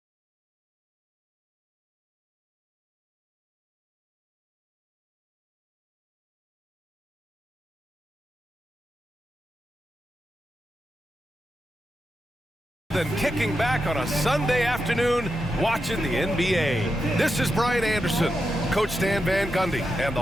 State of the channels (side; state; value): both; normal; correlation 0.88